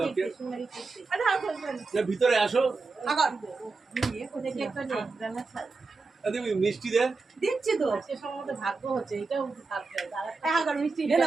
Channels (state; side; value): quieter; left; 4.0 dB